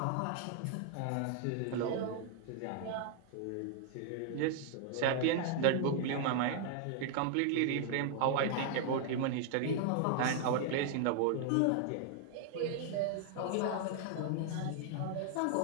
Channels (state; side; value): different; both; correlation 0.00